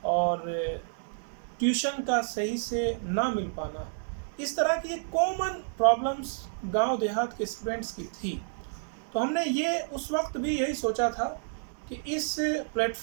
और ट्यूशन का सही से ना मिल पाना, इस तरह की कॉमन प्रॉब्लम्स गांव देहात के स्टूडेंट्स की थी। तो हमने ये उस वक्त भी यही सोचा था कि इस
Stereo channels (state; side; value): silent; left; 58 dB below the other